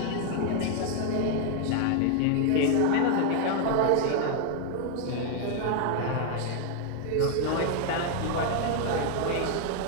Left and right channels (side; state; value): both; different; correlation 0.00